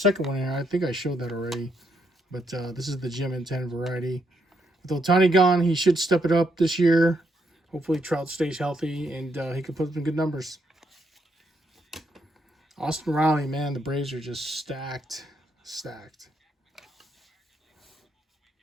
one here. I think I showed that already, but this is the gem and 10 variety. With Ohtani gone, he should step it up this year. Hopefully Trout stays healthy and he can put up some good numbers. Austin Riley, man, the Braves are just stacked.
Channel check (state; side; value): normal; both; correlation 0.76